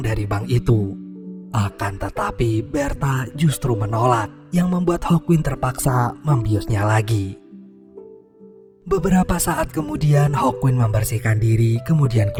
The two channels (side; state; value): both; identical; correlation 1.00